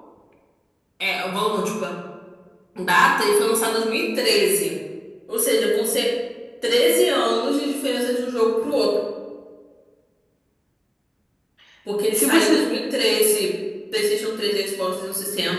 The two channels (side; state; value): both; identical; correlation 1.00